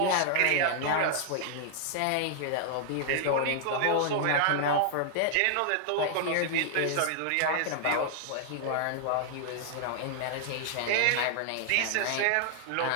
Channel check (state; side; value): different; both; correlation 0.00